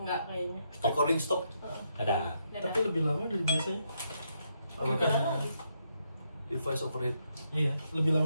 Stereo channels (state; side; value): inverted; both; correlation -0.78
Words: kayaknya. Recording stop. Ada. Tapi lebih lama dari biasanya. Device overheat. Iya, lebih lama